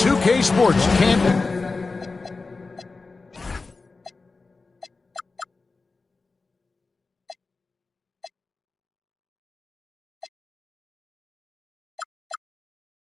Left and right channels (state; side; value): quieter; right; 3.9 dB